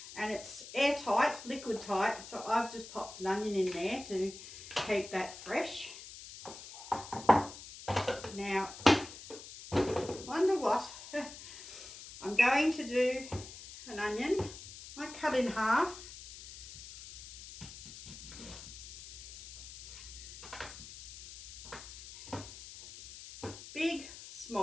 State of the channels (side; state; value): left; noise; hiss, 14 dB below the sound